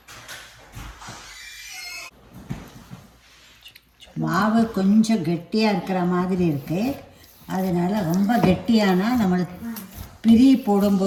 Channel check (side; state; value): both; identical; correlation 1.00